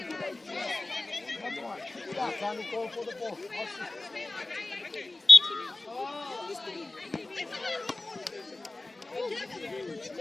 Yeah, can you call for the ball?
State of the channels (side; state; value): right; quieter; 3.0 dB